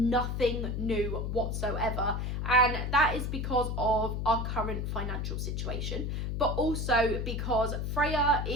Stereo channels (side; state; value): left; noise; hum, 2 dB below the sound